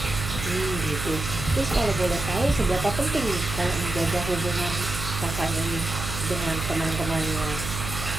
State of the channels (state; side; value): noise; right; hum, 6 dB below the sound